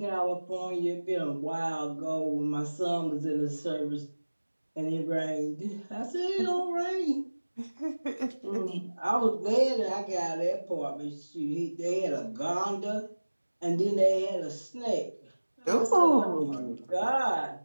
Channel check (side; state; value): both; inverted; correlation -1.00